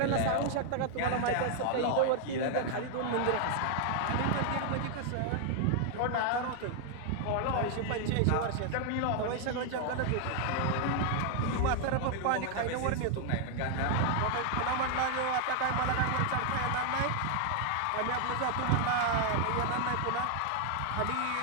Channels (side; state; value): both; different; correlation 0.00